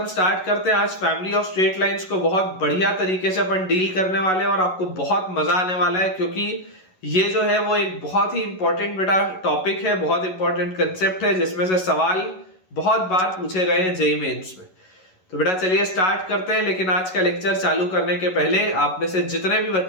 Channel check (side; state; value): right; late; 11 ms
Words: स्टार्ट करते हैं। आज फैमिली ऑफ स्ट्रेट लाइंस को बहुत बढ़िया तरीके से अपन डील करने वाले हैं और आपको बहुत मजा आने वाला है, क्योंकि ये जो है वो एक बहुत ही इंपॉर्टेंट बेटा टॉपिक है, बहुत इंपॉर्टेंट कंसेप्ट है जिसमें से सवाल बहुत बार पूछे गए हैं जेईई मेंस में। तो बेटा चलिए स्टार्ट करते हैं। लेकिन आज का लेक्चर चालू करने के पहले आप में से जितने भी